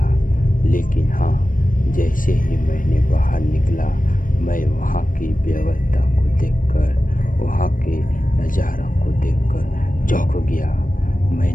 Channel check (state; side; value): late; right; 0.39 ms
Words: लेकिन हाँ, जैसे ही मैंने बाहर निकला मैं वहाँ की व्यवस्था को देखकर, वहाँ के नज़ारा को देखकर चौंक गया।